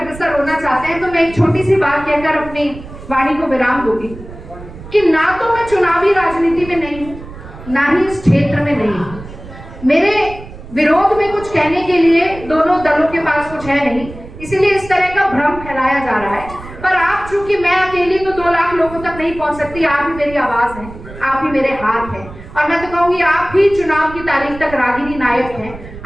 होना चाहते हैं, तो मैं एक छोटी सी बात कहकर अपनी वाणी को विराम दूंगी कि ना तो मैं चुनावी राजनीति में नहीं हूं, ना ही इस क्षेत्र में नहीं हूं। मेरे विरोध में कुछ कहने के लिए दोनों दलों के पास कुछ है नहीं, इसीलिए इस तरह का भ्रम फैलाया जा रहा है। पर आप, चूंकि मैं अकेली तो 2 लाख लोगों तक नहीं पहुंच सकती, आप ही मेरी आवाज है, आप ही मेरे हाथ हैं। और मैं तो कहूंगी आप ही चुनाव की तारीख तक रागिनी नायक हैं।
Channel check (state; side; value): noise; right; rumble, 15 dB below the sound